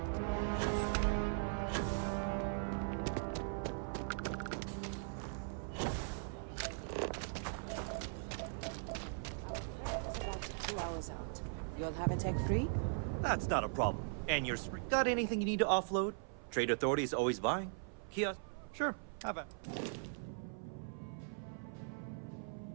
About 2 hours out. You'll have a tech free? That's not a problem. And you're got anything you need to offload? Trade Authority is always buying. Kiosk? Sure, have it.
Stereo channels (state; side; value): silent; left; 51 dB below the other